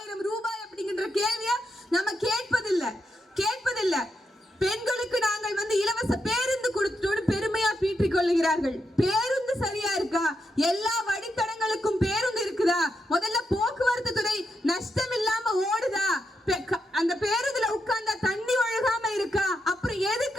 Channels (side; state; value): both; normal; correlation 0.84